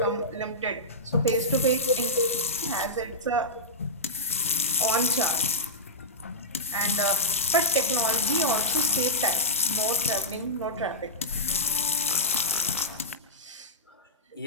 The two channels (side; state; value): both; normal; correlation -0.14